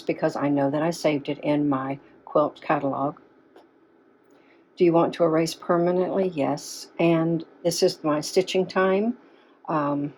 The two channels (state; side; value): identical; both; correlation 1.00